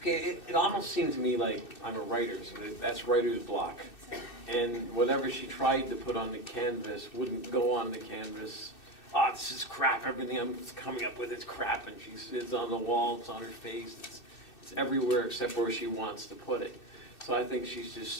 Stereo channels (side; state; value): right; late; 2.6 ms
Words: it almost seemed to me like I'm a writer, so that's writer's block. And whatever she tried to put on the canvas wouldn't go on the canvas. Oh, this is crap, everything I'm coming up with is crap, and it's on the wall, it's on her face, it's everywhere except where she wants to put it. So I think she's just